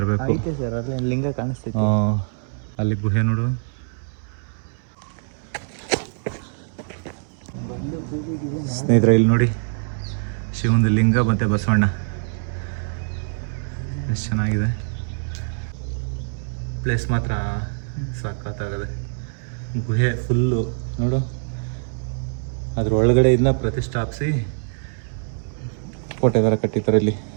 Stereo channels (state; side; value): silent; left; 63 dB below the other